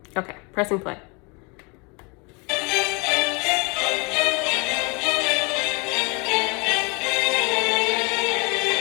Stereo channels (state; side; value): quieter; right; 30.2 dB